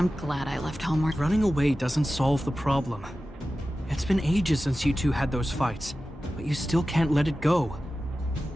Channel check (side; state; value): both; normal; correlation 0.94